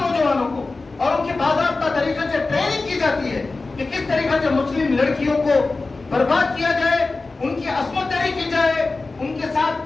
کو، اور ان کی باضابطہ طریقے سے ٹریننگ کی جاتی ہے کہ کس طریقے سے مسلم لڑکیوں کو برباد کیا جائے، ان کی عصمت دری کی جائے، ان کے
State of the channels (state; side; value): quieter; right; 3.6 dB